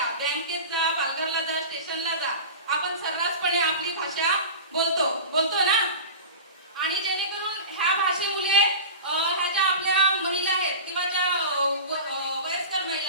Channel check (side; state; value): both; inverted; correlation -0.31